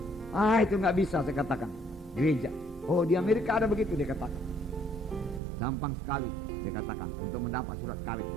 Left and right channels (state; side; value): drops out; left; at 5.4 s